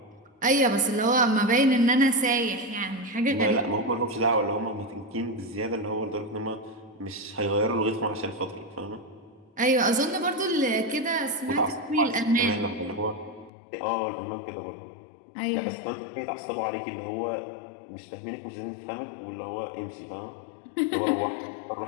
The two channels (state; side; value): drops out; right; at 13.5 s